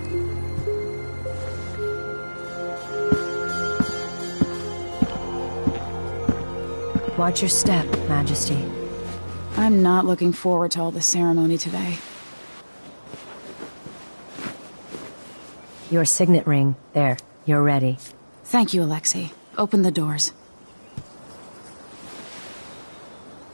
Watch your step, Majesty. I'm not looking forward to all the ceremony today. Your signet ring. There, you're ready. Thank you, Alexei. Open the doors.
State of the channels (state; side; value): inverted; both; correlation -1.00